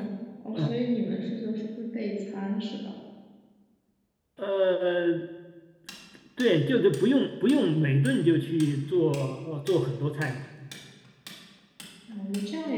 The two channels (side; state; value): both; identical; correlation 1.00